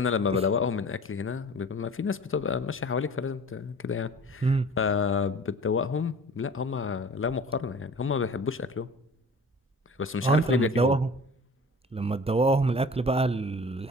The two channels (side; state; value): both; normal; correlation 0.42